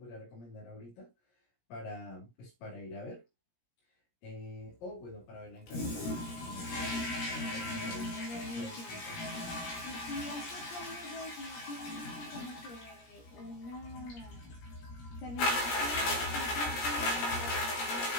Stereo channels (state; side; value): late; right; 17 ms